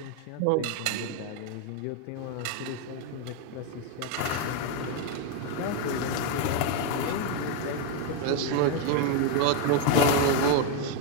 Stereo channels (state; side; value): different; both; correlation 0.01